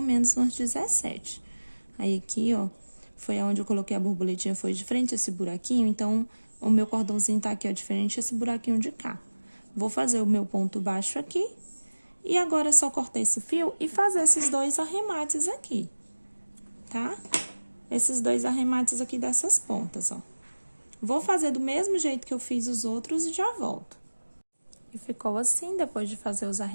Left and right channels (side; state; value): both; inverted; correlation -1.00